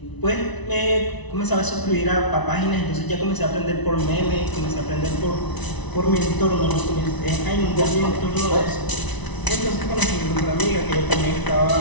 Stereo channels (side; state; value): right; late; 1.0 ms